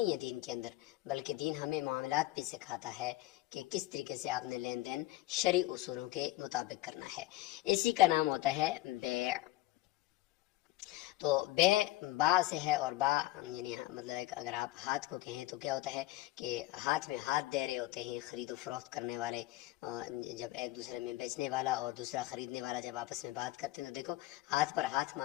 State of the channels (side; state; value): right; quieter; 17.5 dB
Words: ہے دین کے اندر، بلکہ دین ہمیں معاملات بھی سکھاتا ہے کہ کس طریقے سے آپ نے لین دین شرعی اصولوں کے مطابق کرنا ہے۔ اسی کا نام ہوتا ہے بیع۔ تو بے با سے ہے، اور با یعنی مطلب اگر آپ ہاتھ کو کہیں تو کیا ہوتا ہے کہ ہاتھ میں ہاتھ دے رہے ہوتے ہیں خرید و فروخت کرنے والے، جب ایک دوسرے میں بیچنے والا اور دوسرا خریدنے والا جب آپس میں بات کرتے ہیں تو دیکھو ہاتھ پر ہاتھ